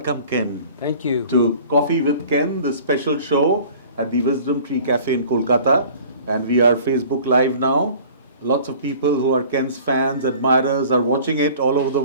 Ken. Thank you. To Coffee with Ken, the special show at the Wisdom Tree Cafe in Kolkata. And we are Facebook Live now. Lots of people who are Ken's fans, admirers, are watching it all over the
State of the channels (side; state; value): both; inverted; correlation -0.47